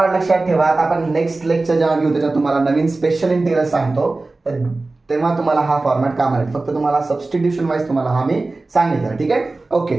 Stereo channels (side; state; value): left; quieter; 3.3 dB